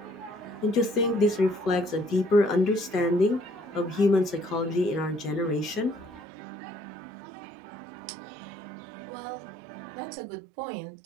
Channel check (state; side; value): drops out; left; at 6.2 s